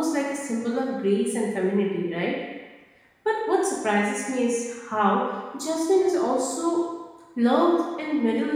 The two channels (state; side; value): identical; both; correlation 1.00